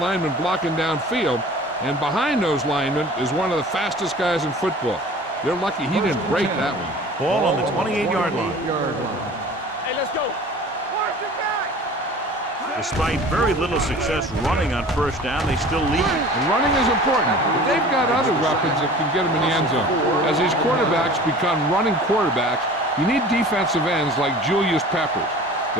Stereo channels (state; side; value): normal; both; correlation 0.43